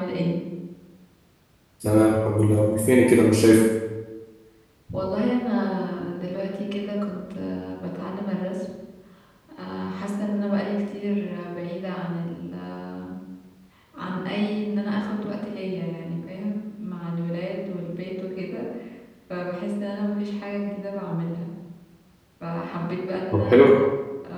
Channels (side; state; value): both; identical; correlation 1.00